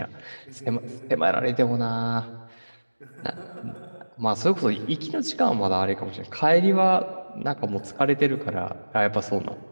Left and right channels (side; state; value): both; inverted; correlation -1.00